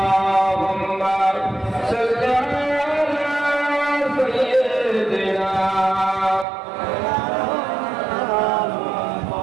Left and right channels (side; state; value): left; drops out; at 6.5 s